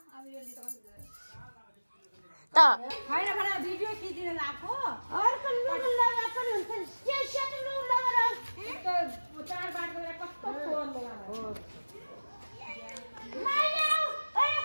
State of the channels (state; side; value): inverted; both; correlation -1.00